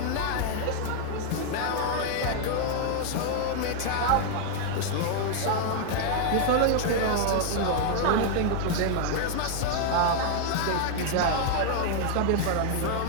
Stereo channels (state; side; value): different; both; correlation 0.00